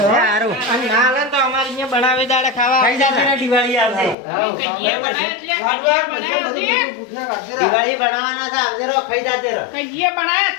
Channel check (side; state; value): right; drops out; at 4.2 s